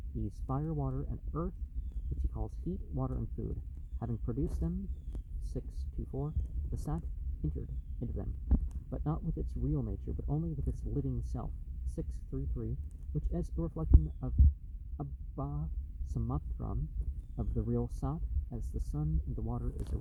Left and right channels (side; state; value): both; identical; correlation 1.00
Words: these fire, water, and earth, which he calls heat, water, and food. Having produced them, 6.2.4, the Sat entered into them, but not with its real nature, but only with its living self, 6.3.3, which as a reflection of Abba Samatram, of the real Sat, as the sun and the water is a